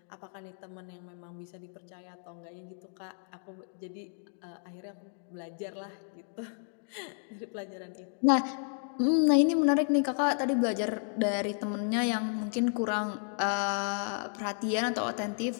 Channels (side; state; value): right; silent; 56 dB below the other